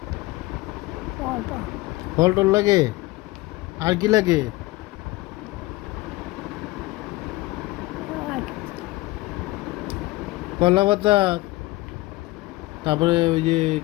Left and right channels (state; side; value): quieter; right; 19.7 dB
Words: কর্তা ফল টল লাগে। আর কি লাগে? আর কলা পাতা, তারপরে ওই যে